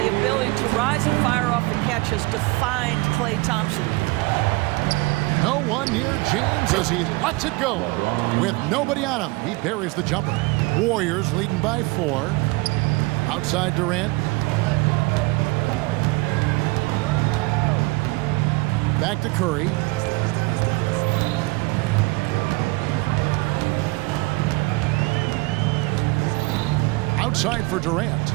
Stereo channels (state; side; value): quieter; left; 24.5 dB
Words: ability to rise and fire off the catch has defined Klay Thompson. No one near James as he lets it go. With nobody on him, he buries the jumper. Warriors leading by 4. Outside Durant. Back to Curry. Outside for Durant.